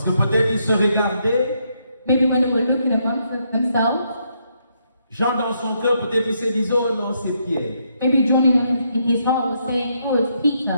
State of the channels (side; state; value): both; inverted; correlation -0.76